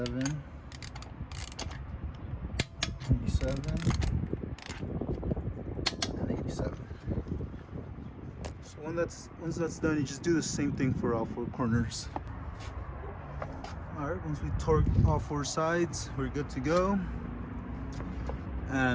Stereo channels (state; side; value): identical; both; correlation 1.00